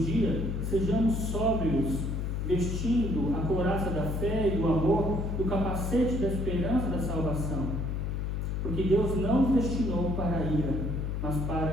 dia, sejamos sóbrios, vestindo a couraça da fé e do amor, do capacete da esperança da salvação. Porque Deus não nos destinou para a ira, mas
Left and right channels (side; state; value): left; noise; hum, 1 dB below the sound